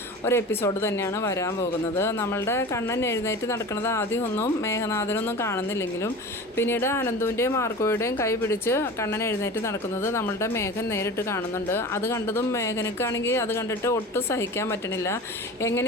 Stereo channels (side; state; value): both; normal; correlation 0.35